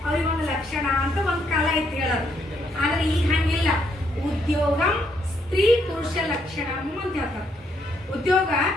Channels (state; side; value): normal; both; correlation 0.73